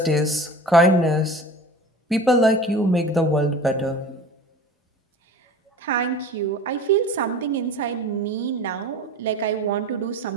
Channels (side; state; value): both; normal; correlation 0.38